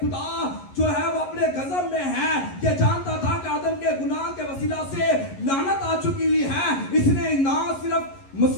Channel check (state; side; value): late; right; 11 ms